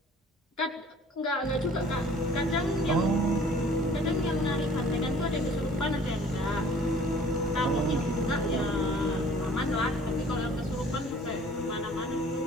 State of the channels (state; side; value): normal; both; correlation 0.52